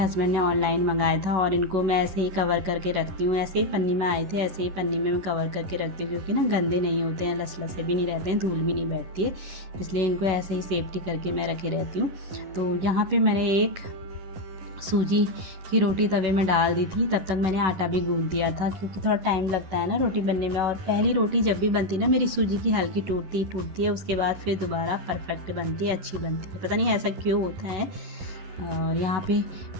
ने ऑनलाइन मंगाया था और इनको मैं ऐसे ही कवर करके रखती हूँ। ऐसे ही पन्नी में आए थे, ऐसे ही पन्नी में मैं कवर करके रखती हूँ क्योंकि ना गंदे नहीं होते हैं, लसलसे भी नहीं रहते हैं, धूल भी नहीं बैठती है, इसलिए इनको ऐसे ही सेफ्टी करके मैं रखे रहती हूँ। तो यहाँ पे मैंने एक सूजी की रोटी तवे में डाल दी थी। तब तक मैंने आटा भी गूंथ दिया था क्योंकि थोड़ा टाइम लगता है ना रोटी बनने में। और पहली रोटी जब भी बनती ना मेरी सूजी की हल्की टूटती है, उसके बाद फिर दोबारा परफेक्ट बनती है, अच्छी बनती है, पता नहीं ऐसा क्यों होता है। और यहाँ पे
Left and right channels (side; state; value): left; late; 11 ms